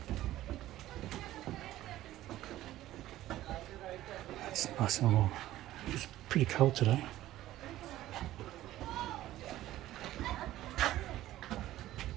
It's nice and warm. It's pretty cold today.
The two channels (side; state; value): left; quieter; 14.6 dB